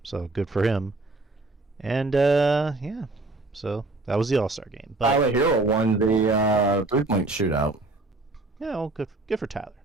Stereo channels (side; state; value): left; quieter; 3.1 dB